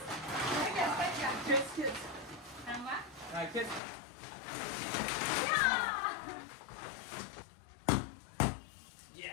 खेच खेच हा खेच.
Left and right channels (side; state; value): right; drops out; at 3.8 s